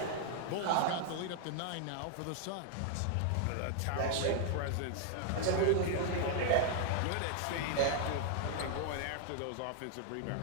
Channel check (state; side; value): different; both; correlation 0.00